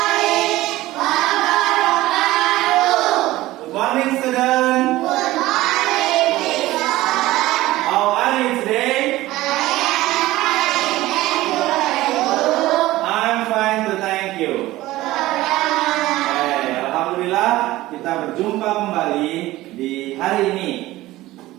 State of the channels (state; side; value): quieter; left; 17.2 dB